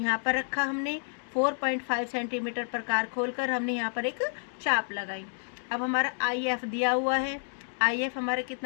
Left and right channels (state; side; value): silent; right; 58 dB below the other